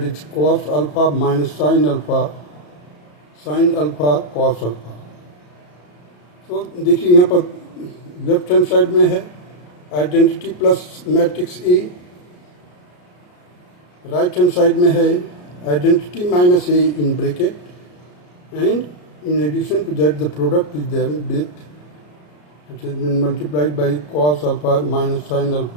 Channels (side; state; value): right; late; 34 ms